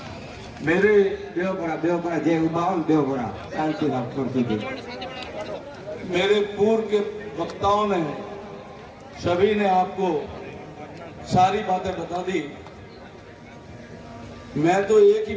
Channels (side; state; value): both; identical; correlation 1.00